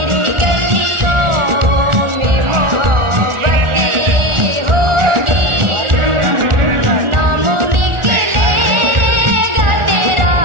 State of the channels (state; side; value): late; left; 1.4 ms